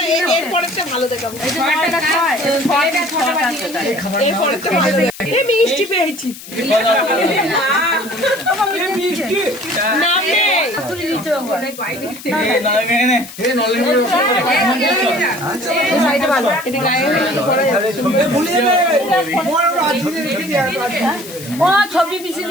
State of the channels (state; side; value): noise; left; hiss, 15 dB below the sound